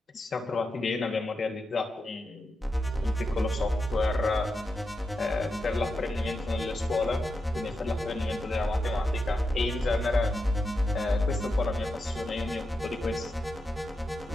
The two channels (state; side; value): normal; both; correlation 0.88